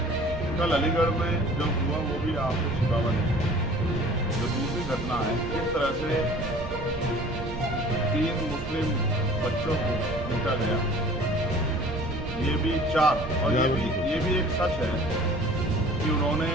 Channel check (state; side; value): noise; right; rumble, 10 dB below the sound